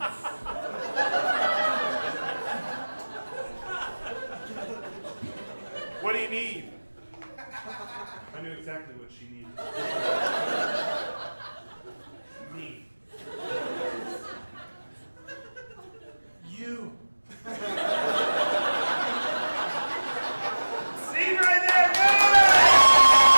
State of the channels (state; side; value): inverted; both; correlation -1.00